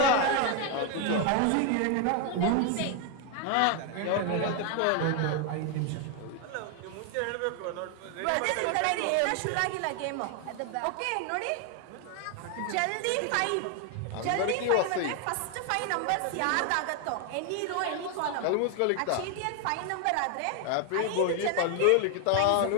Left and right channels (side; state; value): both; different; correlation 0.01